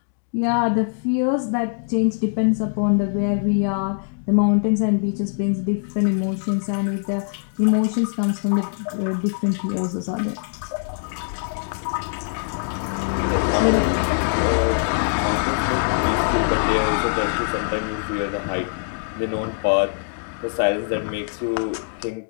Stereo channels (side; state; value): right; silent; digital silence